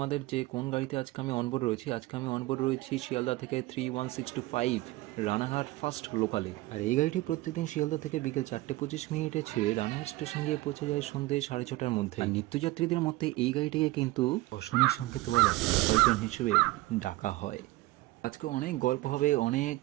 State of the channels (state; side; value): quieter; left; 19.0 dB